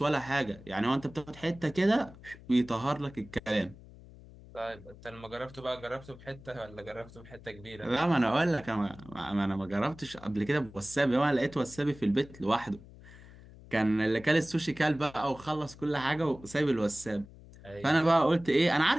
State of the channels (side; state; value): left; noise; hum, 20 dB below the sound